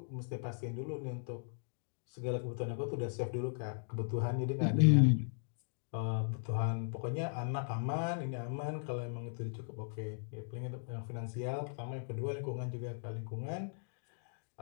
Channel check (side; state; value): right; silent; digital silence